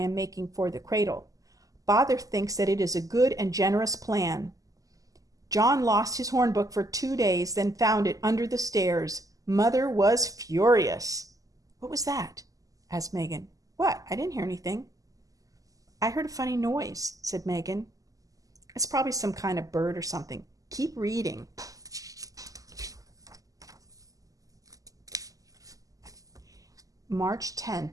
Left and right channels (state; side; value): late; left; 0.17 ms